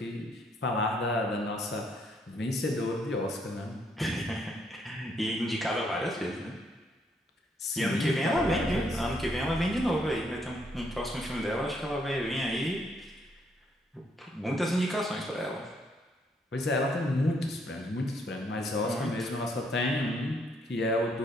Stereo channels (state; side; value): normal; both; correlation 0.71